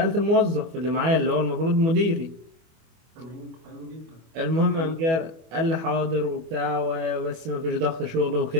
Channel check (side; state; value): left; late; 25 ms